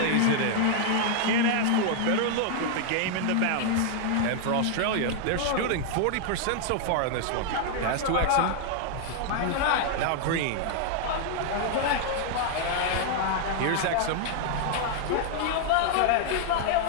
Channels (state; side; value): different; both; correlation 0.00